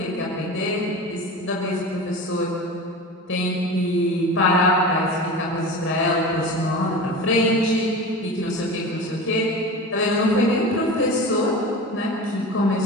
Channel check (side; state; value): both; normal; correlation 0.31